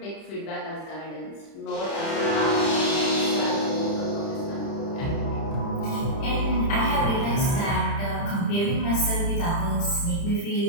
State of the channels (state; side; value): late; right; 30 ms